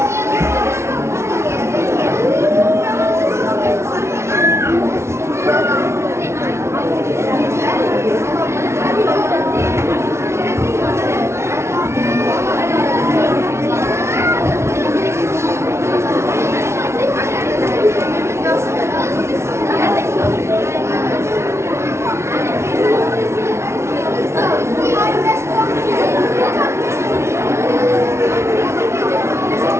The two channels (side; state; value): left; late; 0.13 ms